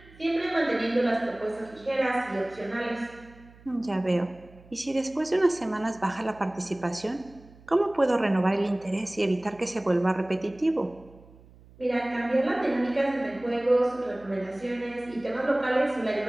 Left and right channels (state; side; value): noise; right; hum, 24 dB below the sound